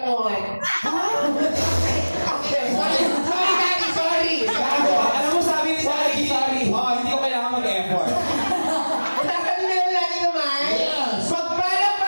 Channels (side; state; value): both; inverted; correlation -1.00